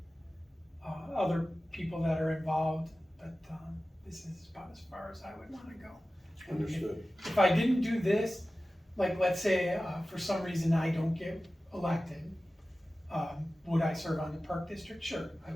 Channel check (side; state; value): both; normal; correlation 0.95